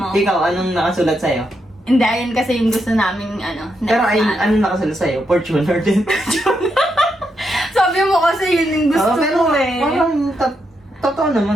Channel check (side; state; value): both; normal; correlation 0.82